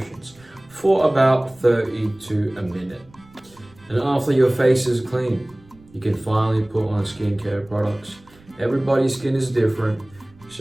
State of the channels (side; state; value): right; noise; rumble, 27 dB below the sound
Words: for about 30 to a minute. And after your face is clean, you can finally put on skincare products. Everybody's skin is different,